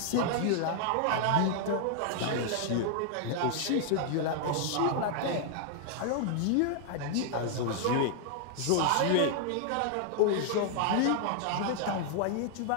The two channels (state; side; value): different; both; correlation 0.00